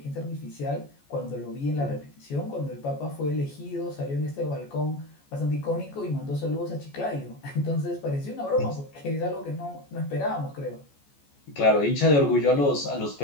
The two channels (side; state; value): right; late; 14 ms